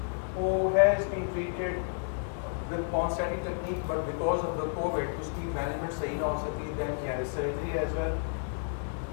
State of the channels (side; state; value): right; silent; digital silence